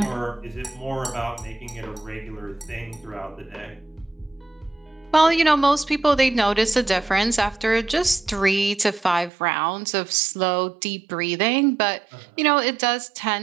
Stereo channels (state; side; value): drops out; left; at 9.3 s